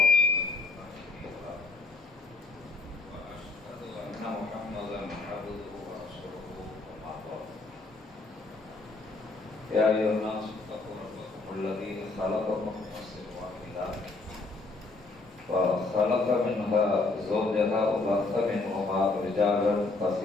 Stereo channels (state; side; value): quieter; right; 3.5 dB